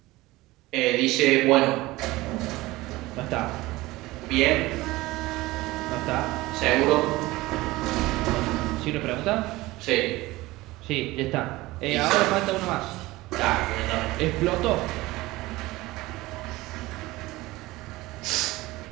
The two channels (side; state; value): left; quieter; 19.4 dB